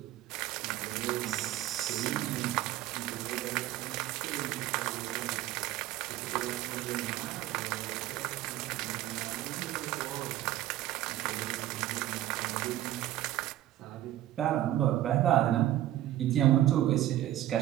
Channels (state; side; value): quieter; left; 14.0 dB